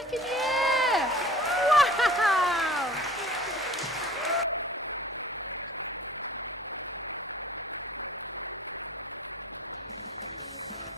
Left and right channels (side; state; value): both; normal; correlation 0.46